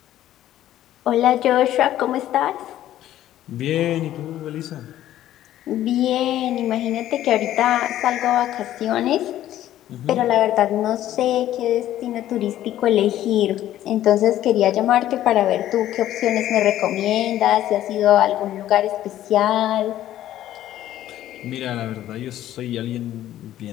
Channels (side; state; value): right; quieter; 12.9 dB